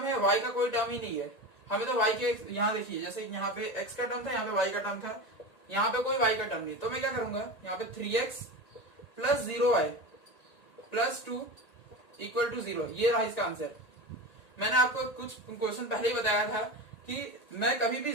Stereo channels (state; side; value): late; right; 1.9 ms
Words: है, y का कोई टर्म ही नहीं है। हमें तो y के, यहाँ देखिए जैसे यहाँ पे x का टर्म था, यहाँ पे y का टर्म था, यहाँ पे कोई y का टर्म नहीं। तो मैं क्या करूंगा, यहाँ पे 3x plus 0y plus 2 equal to 0। ये रहा इसका आंसर। मैंने आपको कुछ क्वेश्चन पहले ही बताया था कि मैं कभी भी